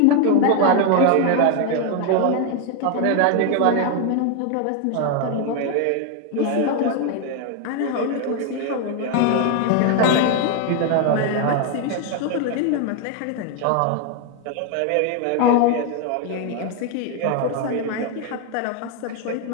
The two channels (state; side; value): different; both; correlation 0.01